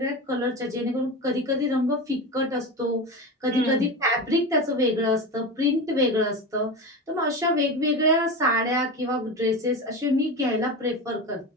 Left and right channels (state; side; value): normal; both; correlation 0.24